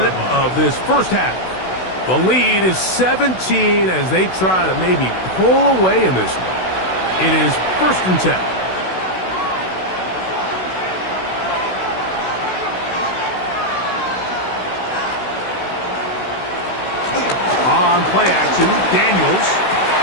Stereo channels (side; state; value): right; late; 16 ms